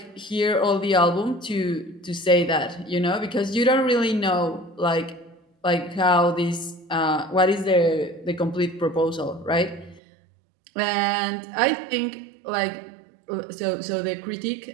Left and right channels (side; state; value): left; drops out; at 10.0 s